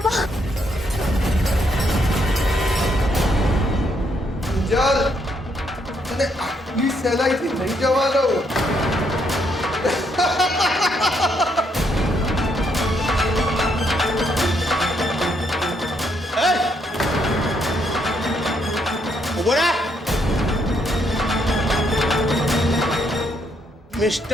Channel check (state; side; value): normal; both; correlation 0.74